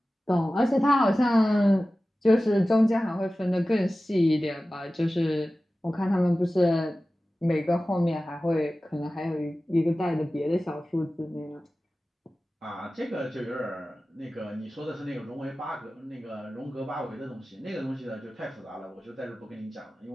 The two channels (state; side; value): normal; both; correlation 0.96